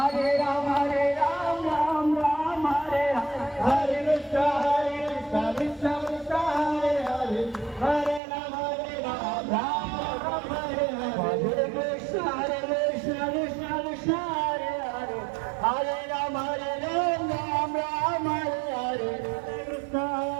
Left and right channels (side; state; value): left; drops out; at 8.2 s